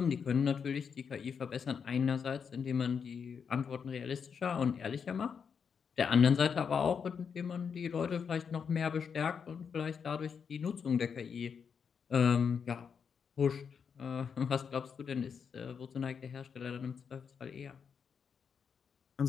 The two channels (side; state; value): right; quieter; 6.6 dB